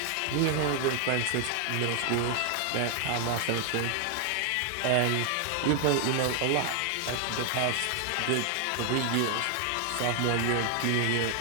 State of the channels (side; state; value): both; different; correlation 0.00